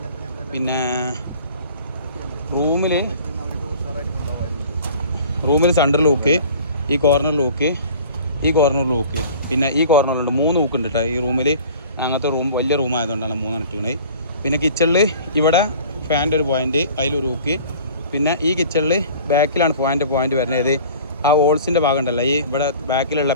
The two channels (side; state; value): both; inverted; correlation -0.45